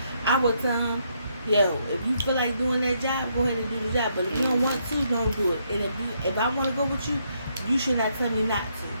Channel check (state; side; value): inverted; both; correlation -0.75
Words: I would tell him, yo, if you feel like doing that job, go ahead and do the job. But if you don't want to, don't do it. And if I want to go with you, you should not tell me not to.